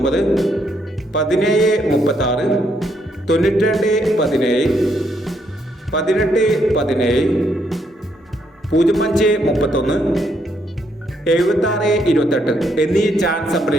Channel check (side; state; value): both; normal; correlation 0.74